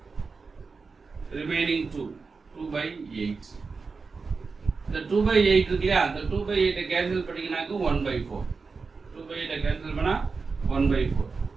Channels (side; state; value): left; quieter; 4.6 dB